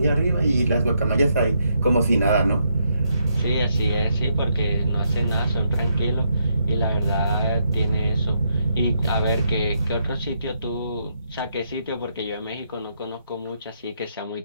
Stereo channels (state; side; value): inverted; both; correlation -0.77